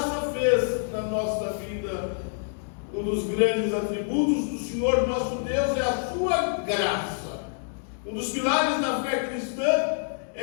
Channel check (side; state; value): right; silent; digital silence